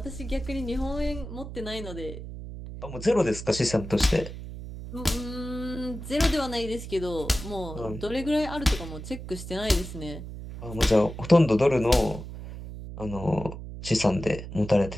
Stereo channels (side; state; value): right; noise; hum, 10 dB below the sound